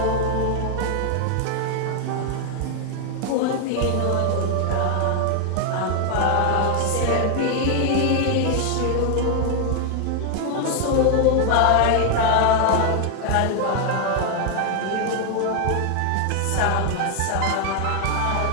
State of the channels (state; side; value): different; both; correlation 0.00